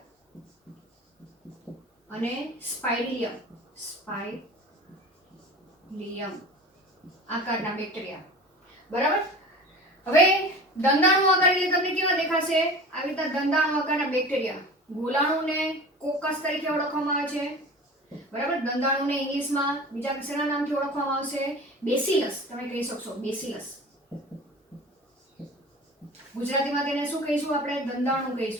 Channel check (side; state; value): both; normal; correlation 0.37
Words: અને સ્પાઇરિલિયમ આકારના બેક્ટેરિયા, બરાબર. હવે દંડાણુ આકાર એટલે તમને કેવા દેખાશે? આવી રીતના દંડાણુ આકારના બેક્ટેરિયા. ગોલાણુને કોકસ તરીકે ઓળખવામાં આવે છે, બરાબર. દંડાણુને ઇંગ્લિશમાં બીજા કશાના નામથી ઓળખવામાં આવશે? બેસિલસ. તમે કહી શકશો બેસિલસ. ગુજરાતીમાં તેને શું કહીશું આપણે? દંડાણુ